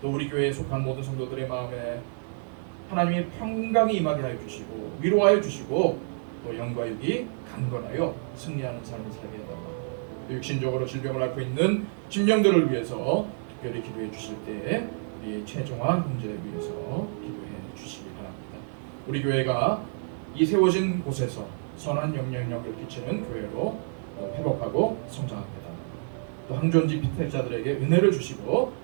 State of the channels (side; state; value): left; silent; digital silence